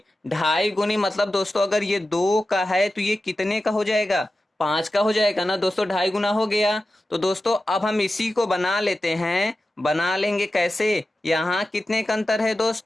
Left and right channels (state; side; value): normal; both; correlation 0.93